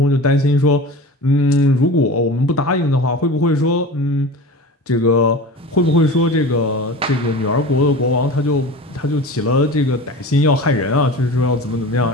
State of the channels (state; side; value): normal; both; correlation 0.34